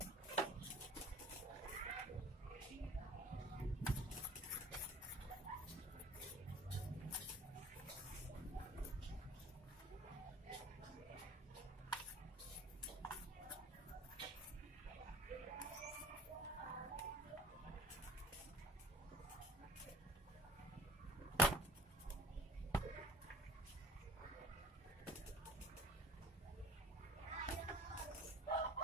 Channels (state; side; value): normal; both; correlation 0.48